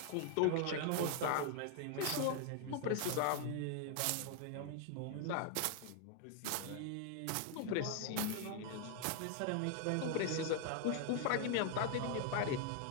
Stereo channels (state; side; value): different; both; correlation 0.00